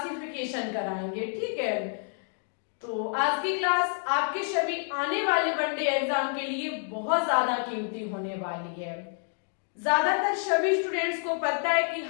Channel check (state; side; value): silent; right; 59 dB below the other